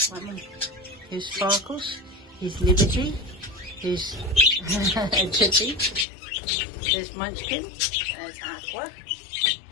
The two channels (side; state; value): right; drops out; at 6.1 s